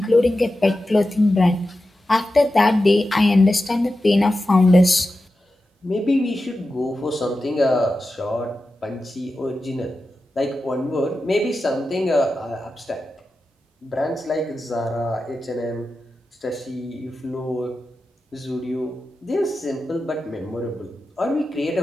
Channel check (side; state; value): both; normal; correlation 0.92